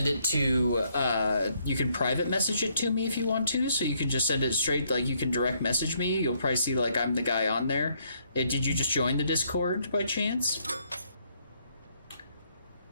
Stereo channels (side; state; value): both; inverted; correlation -0.71